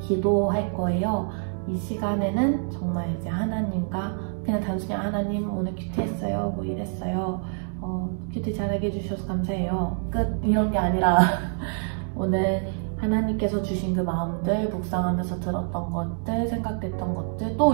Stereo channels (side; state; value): left; silent; 61 dB below the other